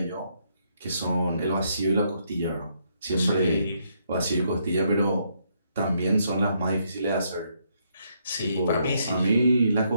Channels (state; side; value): inverted; both; correlation -0.74